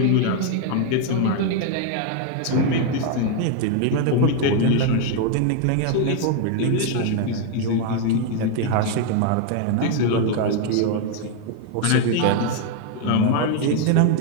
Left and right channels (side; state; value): both; different; correlation 0.00